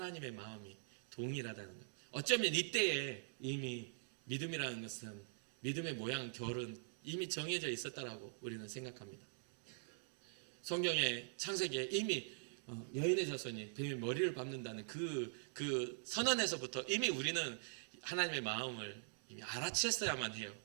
마음이 동일하다는 것. 어쩌면 이때에 이미 믿음이라는 것은 믿음의 모양, 결은 이미 정해져 있었다라고 우리는 생각합니다. 성경의 창세기에 이미 여인의 자손이 뱀의 머리를 밟는다는 그 선언에서부터 이미 우리는 하나님의 마음을 이미 알아챘어야만 해요.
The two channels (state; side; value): silent; left; digital silence